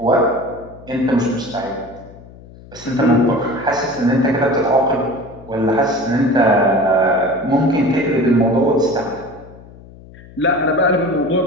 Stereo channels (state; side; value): noise; left; hum, 20 dB below the sound